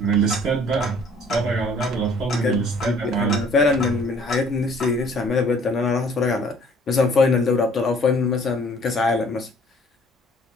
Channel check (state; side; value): normal; both; correlation 0.56